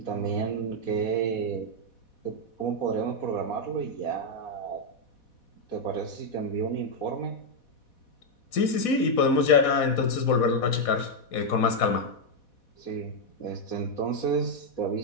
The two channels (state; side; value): late; right; 4.1 ms